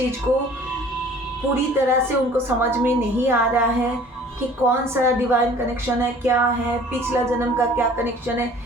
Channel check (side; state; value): both; normal; correlation 0.50